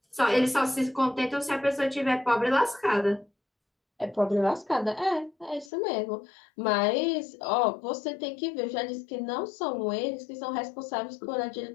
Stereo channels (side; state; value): right; drops out; at 5.7 s